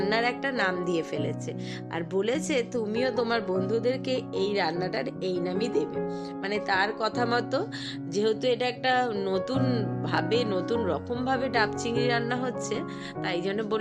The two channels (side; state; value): both; identical; correlation 1.00